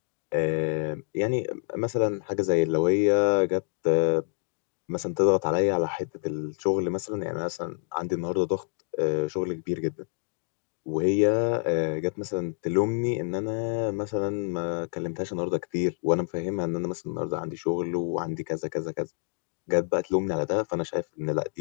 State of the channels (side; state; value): right; silent; digital silence